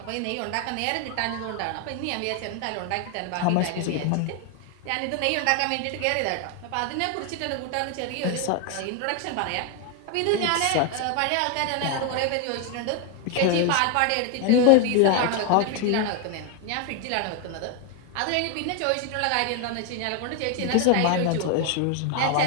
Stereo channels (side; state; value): both; different; correlation 0.01